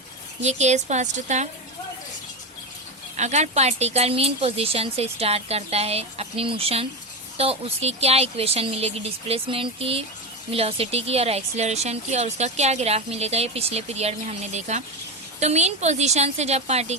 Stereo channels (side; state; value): both; normal; correlation 0.15